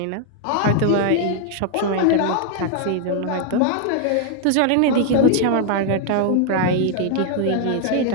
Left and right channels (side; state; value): both; different; correlation 0.00